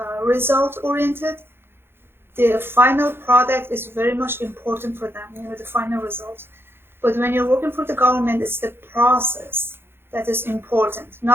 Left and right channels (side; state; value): left; late; 0.11 ms